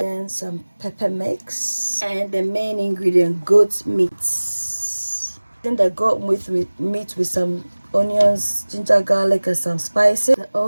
some pepper mix, and the main ingredient, goat meat. Then the goat meat with some onions, ginger, garlic, and some spices. The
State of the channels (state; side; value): inverted; both; correlation -1.00